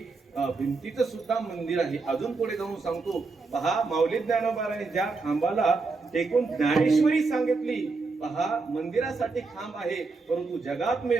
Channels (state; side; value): quieter; left; 4.1 dB